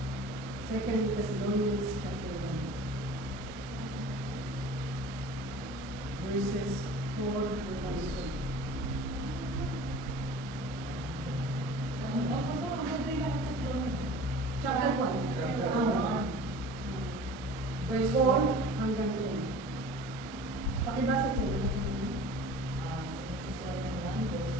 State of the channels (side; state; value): both; normal; correlation 0.42